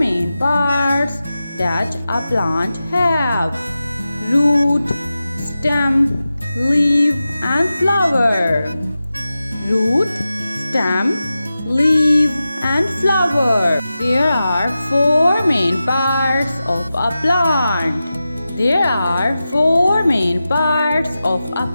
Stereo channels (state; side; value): inverted; both; correlation -0.93